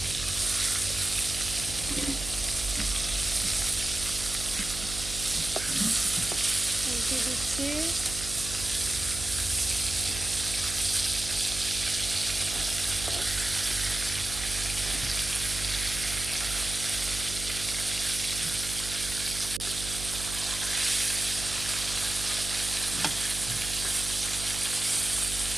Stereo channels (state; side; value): noise; right; hum, 9 dB below the sound